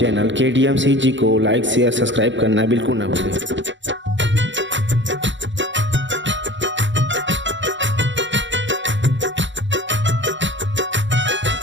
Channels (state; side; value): late; left; 0.54 ms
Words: KDMCG को लाइक शेयर सब्सक्राइब करना बिल्कुल ना भूलें।